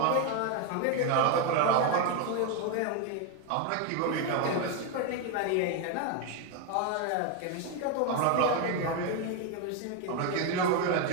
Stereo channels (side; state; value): both; different; correlation 0.02